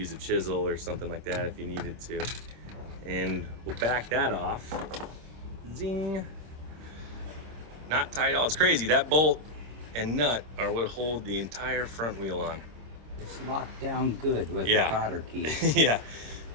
a chisel or something like that if you needed to. And we'll back that off. Zing. Not tight at all. It's crazy. That bolt and nut are what hold the entire front wheel on. It's locked down good with the cotter key. Yeah.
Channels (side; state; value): left; late; 26 ms